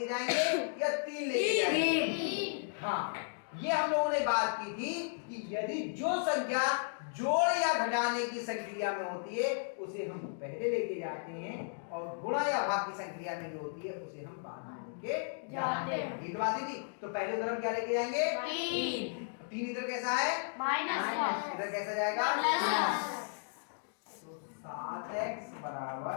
जाएंगे या 3 लेके जाएंगे। हाँ, ये हम लोगों ने बात की थी कि यदि जो संख्या जोड़ या घटाने की संक्रिया में होती है उसे हम पहले लेके जाते हैं, और गुणा या भाग की संक्रिया में जो होती है उसे हम बाद में लेके जाते हैं। ये बात थी। तो पहले उधर हम क्या लेके जाएंगे? 3 इधर कैसा है? माइनस। इधर कैसा जाएगा? प्लस। तो 7x बराबर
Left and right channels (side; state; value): right; silent; digital silence